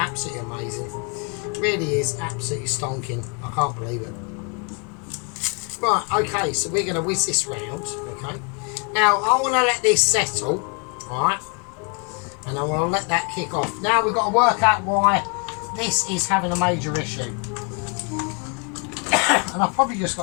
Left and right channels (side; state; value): right; quieter; 36.5 dB